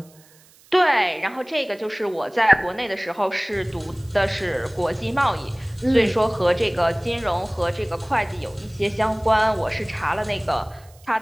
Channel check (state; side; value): noise; right; hiss, 28 dB below the sound